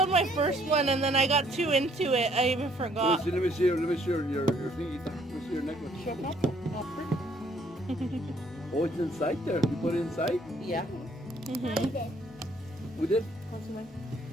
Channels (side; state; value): both; normal; correlation 0.64